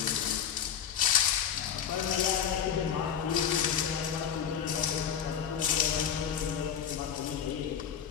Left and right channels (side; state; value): right; quieter; 8.5 dB